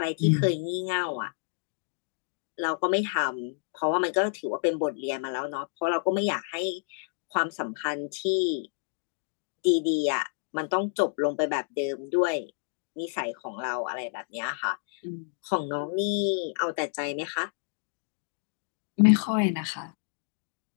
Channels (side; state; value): right; silent; digital silence